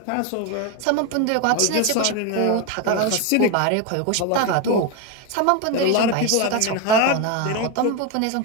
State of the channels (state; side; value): different; both; correlation 0.02